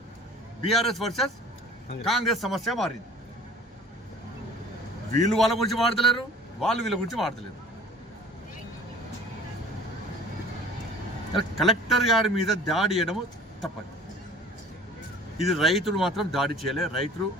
బీఆర్ఎస్ వర్సెస్ కాంగ్రెస్ సమస్య మారింది. వీళ్ళు వాళ్ళ గురించి మాడతలేరు, వాళ్ళు వీళ్ళ గురించి మాడతలేరు. కలెక్టర్ గారి మీద దాడి చేయడము తప్పదు. ఇది రైతులు మాత్రం దాడి చేయలే. రైతులు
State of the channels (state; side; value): normal; both; correlation 0.47